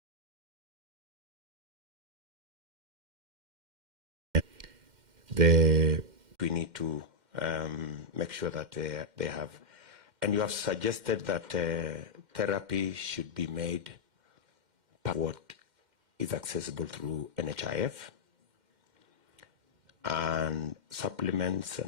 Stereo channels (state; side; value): late; left; 2.1 ms